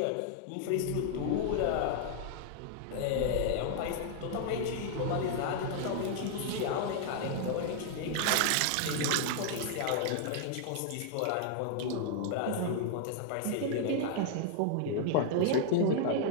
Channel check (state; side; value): different; both; correlation -0.01